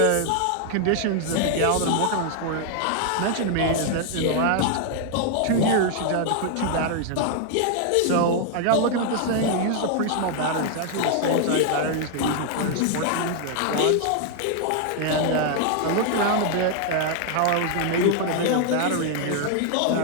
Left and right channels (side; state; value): both; different; correlation 0.00